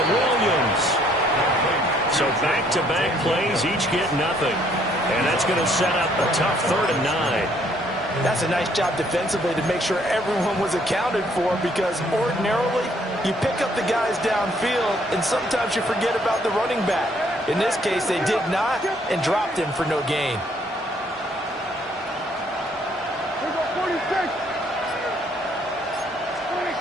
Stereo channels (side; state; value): both; normal; correlation 0.65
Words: Williams. So back-to-back plays, each get nothing. And that's going to set up a tough 3rd and 9. That's a nice job defensively to make sure everyone was accounted for, because ordinarily you pick up the guys downfield and sometimes you forget about the running back. In this case, they did not and dropped him for no gain.